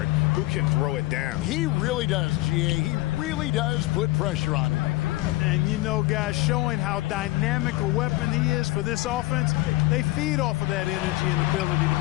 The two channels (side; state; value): right; quieter; 19.0 dB